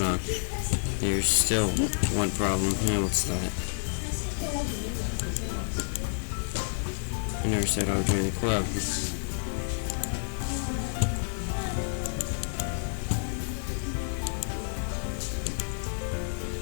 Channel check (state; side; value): silent; right; digital silence